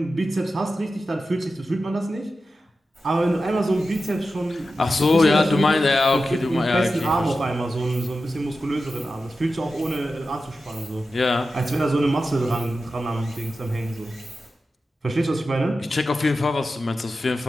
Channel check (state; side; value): normal; both; correlation 0.92